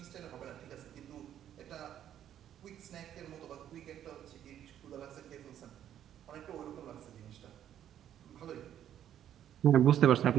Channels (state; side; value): quieter; left; 10.6 dB